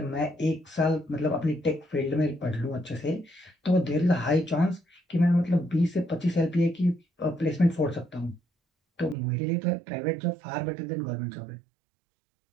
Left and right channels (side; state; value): left; drops out; at 9.2 s